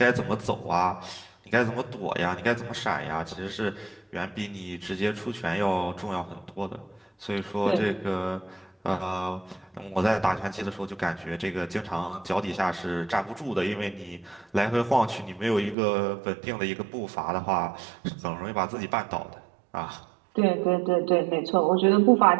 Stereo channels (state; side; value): drops out; left; at 15.8 s